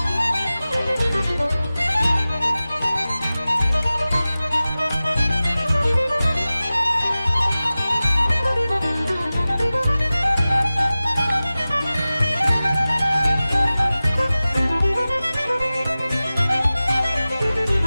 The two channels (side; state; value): both; inverted; correlation -0.97